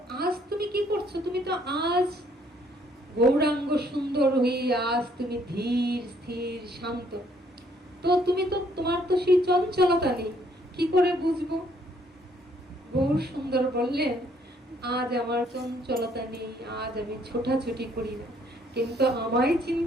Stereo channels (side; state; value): both; normal; correlation 0.66